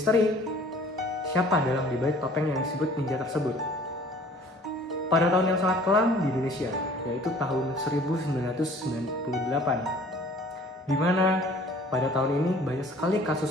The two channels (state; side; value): normal; both; correlation 0.51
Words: siapa dalam dibalik topeng yang disebut ninja tersebut. Pada tahun yang sangat kelam di Indonesia, yaitu tahun 1998, di mana pada tahun ini banyak sekali